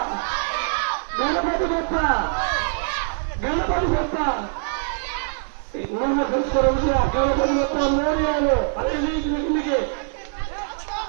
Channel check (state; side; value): silent; left; digital silence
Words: గణపతి గొప్ప గణపతి గొప్ప నమస్కారం. గణపతి గొప్ప మోర్యాలు అదే కిందికి